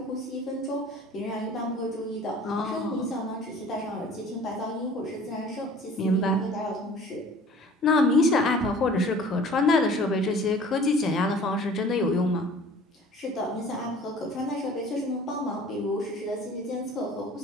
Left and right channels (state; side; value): normal; both; correlation 0.48